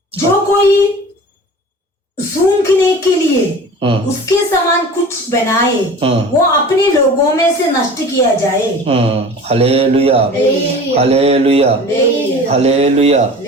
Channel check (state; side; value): normal; both; correlation 0.39